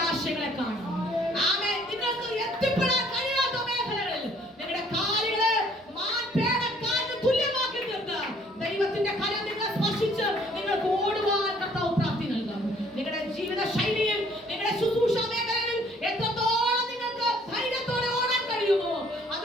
കാണും. ആമേൻ. നിങ്ങൾക്ക് എത്തിപ്പെടാൻ കഴിയാത്ത മേഖലകളിൽ നിങ്ങളുടെ കാലുകളെ മാൻപേടക്കാലിന് തുല്യമാക്കി തീർത്ത് ദൈവത്തിന്റെ കരം നിങ്ങളെ സ്പർശിച്ച് നിങ്ങൾക്ക് ഓടുവാൻ കർത്താവ് പ്രാപ്തി നൽകും. നിങ്ങളുടെ ജീവിത ശൈലിയിൽ, നിങ്ങളുടെ ശുശ്രൂഷ മേഖലയിൽ എത്രത്തോളം നിങ്ങൾക്ക് ധൈര്യത്തോടെ ഓടാൻ കഴിയുമോ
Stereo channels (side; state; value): both; normal; correlation 0.60